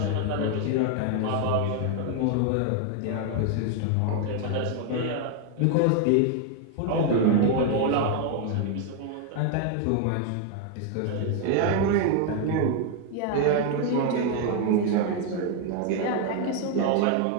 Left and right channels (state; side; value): different; both; correlation 0.00